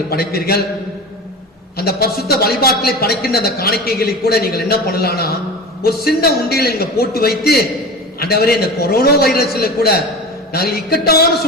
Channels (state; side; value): normal; both; correlation 0.32